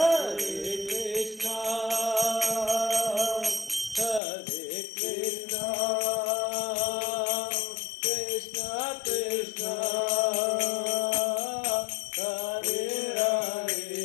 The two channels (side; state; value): right; drops out; at 4.2 s